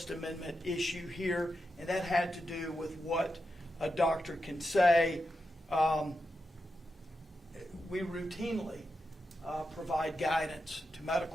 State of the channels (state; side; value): normal; both; correlation 0.88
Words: Amendment issue here, and that had to do with what a doctor can say. We routinely provide guidance to